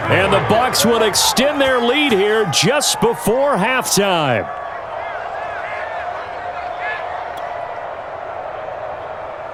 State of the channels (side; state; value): both; identical; correlation 1.00